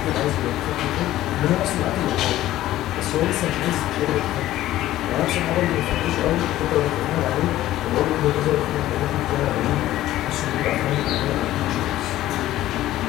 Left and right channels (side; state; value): right; quieter; 14.6 dB